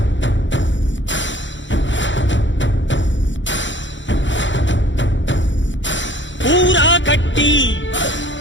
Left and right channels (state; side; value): late; right; 0.54 ms